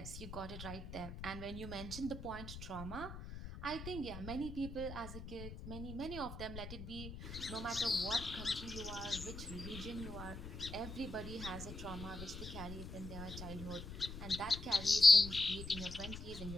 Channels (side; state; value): left; noise; rumble, 10 dB below the sound